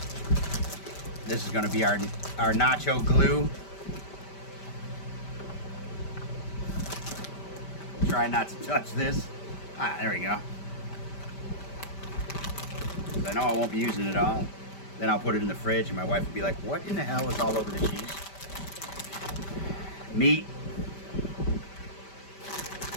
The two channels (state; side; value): late; right; 5.1 ms